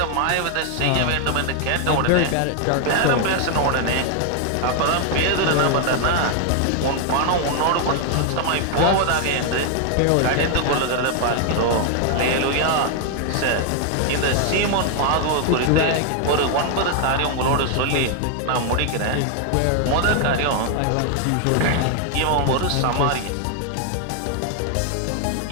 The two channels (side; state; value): both; different; correlation 0.00